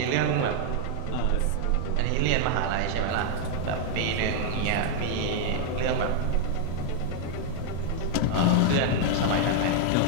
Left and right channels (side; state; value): both; different; correlation 0.00